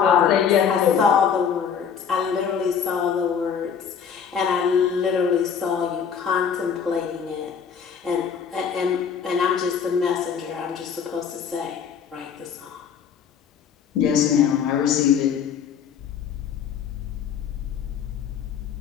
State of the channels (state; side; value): quieter; right; 7.3 dB